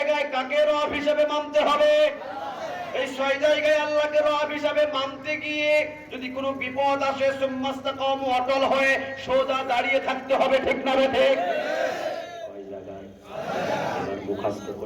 কাকে রব হিসাবে মানতে হবে? এই 6 জায়গায় আল্লাহকে রব হিসাবে মানতে গিয়ে যদি কোনো বিপদ আসে, সুম্মাস্তাকামু, অটল হয়ে সোজা দাঁড়িয়ে থাকতে হবে। ঠিক না ঠিক? কয় জায়গায়? এবার মুখস্থ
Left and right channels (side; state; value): both; identical; correlation 1.00